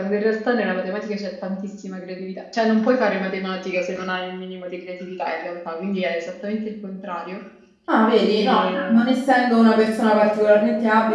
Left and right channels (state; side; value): identical; both; correlation 1.00